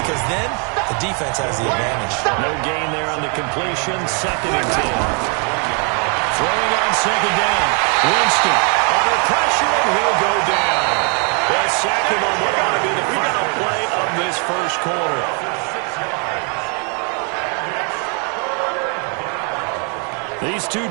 because then the defense has the advantage. No gain there on the completion. 2nd and 10. Throwing on 2nd down. Winston under pressure, and he'll go down. The second on what ought to be the final play of this first quarter. These two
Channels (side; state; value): left; quieter; 37.6 dB